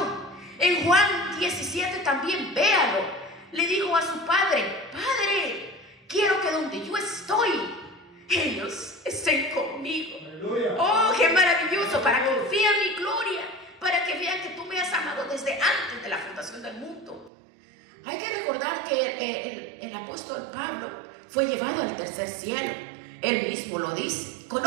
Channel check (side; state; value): left; drops out; at 17.3 s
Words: En Juan 17 también, véalo. Le dijo a su padre: Padre, quiero que donde yo estoy, ellos estén conmigo. Aleluya. Oh, qué maravilloso, para que vean mi gloria, para que vean que tú me has amado desde antes de la fundación del mundo. Hay que recordar que el apóstol Pablo fue llevado al tercer cielo. Él mismo lo dice.